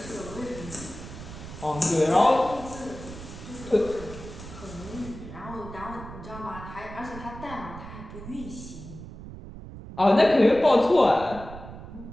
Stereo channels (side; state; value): right; noise; rumble, 13 dB below the sound